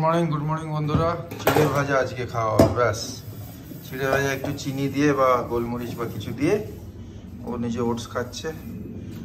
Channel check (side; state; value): both; identical; correlation 1.00